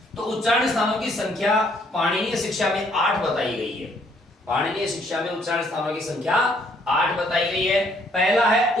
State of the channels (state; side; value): normal; both; correlation 0.66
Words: तो उच्चारण स्थानों की संख्या पाणिनीय शिक्षा में 8 बताई गई है। पाणिनीय शिक्षा में उच्चारण स्थानों की संख्या 8 बताई गई है। पहला है